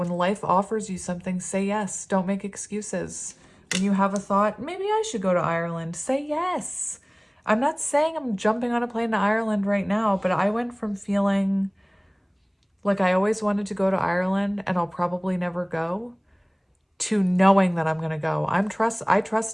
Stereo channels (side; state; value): both; identical; correlation 1.00